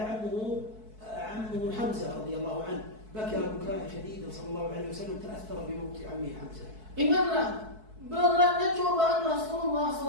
عمه حمزة رضي الله عنه، بكى بكاء شديدا صلى الله عليه وسلم، تأثر بموت عمه حمزة. Ingatlah beratnya cobaan Rasulullah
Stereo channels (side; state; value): left; late; 4.6 ms